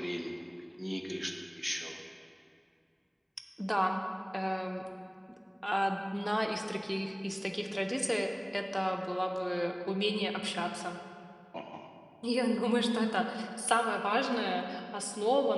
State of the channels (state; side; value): identical; both; correlation 1.00